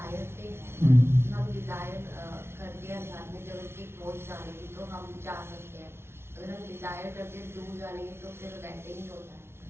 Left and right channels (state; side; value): late; left; 0.12 ms